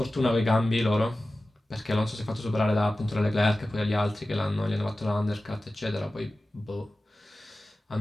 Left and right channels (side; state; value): both; normal; correlation 0.95